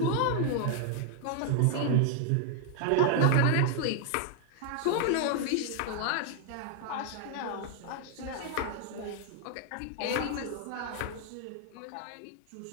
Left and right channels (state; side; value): different; both; correlation 0.00